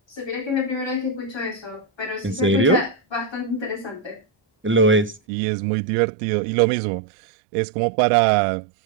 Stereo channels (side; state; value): left; drops out; at 5.2 s